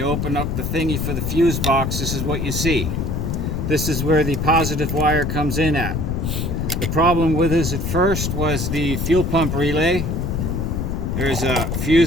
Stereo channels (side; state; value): left; noise; rumble, 1 dB below the sound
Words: open up the thingy for the fuse box, this is what you see. This is where the positive wire comes in at. The problem with this at first was the fuel pump relay. There's a